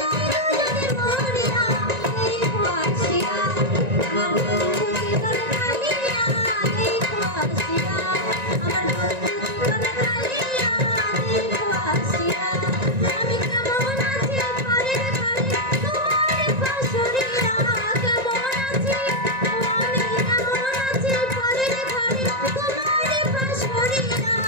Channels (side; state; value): left; late; 1.9 ms